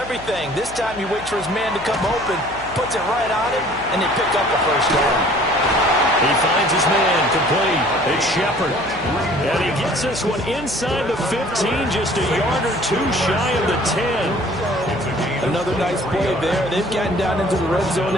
This time you wait for his man to come open, puts it right on him, and they pick up the first down. He finds his man, complete. It's Shepard. And he gets this one inside the 15, just a yard or two shy of the 10. Another nice play there. They've gotten down into the red zone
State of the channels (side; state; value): left; noise; hum, 17 dB below the sound